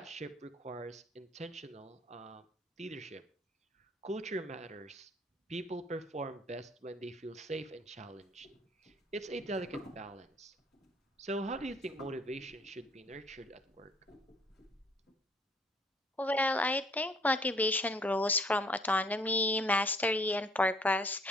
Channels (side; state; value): both; normal; correlation 0.60